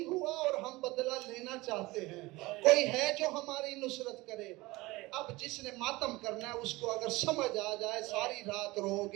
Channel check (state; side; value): quieter; left; 21.1 dB